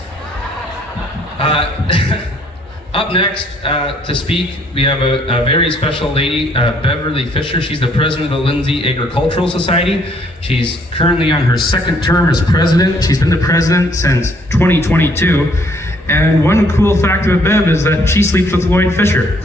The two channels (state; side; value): normal; both; correlation 0.65